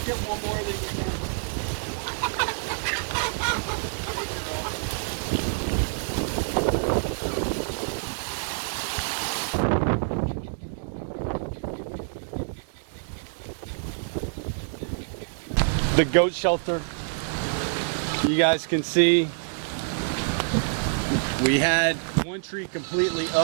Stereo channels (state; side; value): silent; left; digital silence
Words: get one more that you can. The goat shelter, you guys can see we had one tree completely